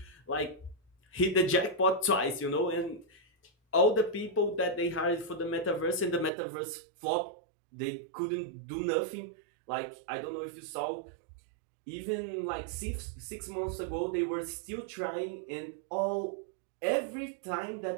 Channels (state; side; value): drops out; left; at 6.3 s